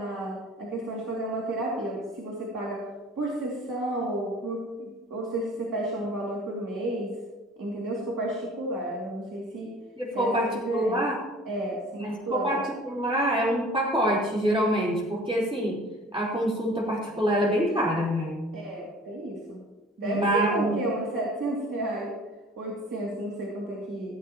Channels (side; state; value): both; normal; correlation 0.47